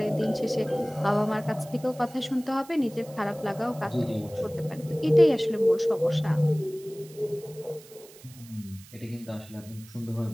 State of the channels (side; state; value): right; noise; hiss, 21 dB below the sound